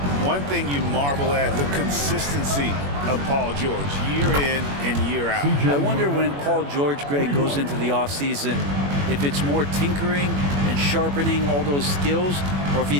One thing you marvel at, the consistency of Paul George, year in and year out. I wonder when Paul George, Greg, goes into the offseason, if it's more tinkering and sharpening all those skills, or if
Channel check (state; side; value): late; left; 21 ms